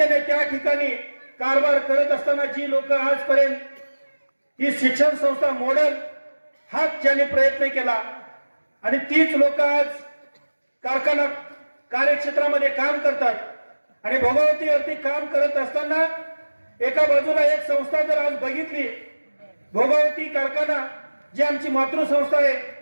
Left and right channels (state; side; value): inverted; both; correlation -1.00